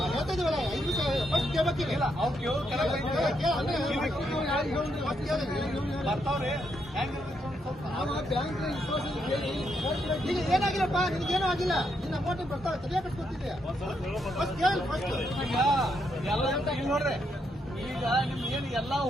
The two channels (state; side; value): normal; both; correlation 0.78